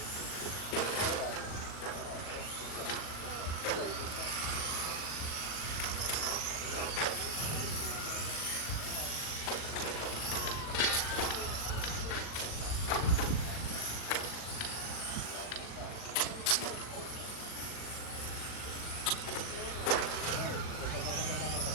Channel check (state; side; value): late; right; 39 ms